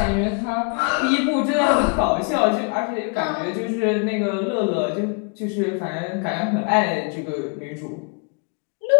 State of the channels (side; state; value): right; quieter; 37.1 dB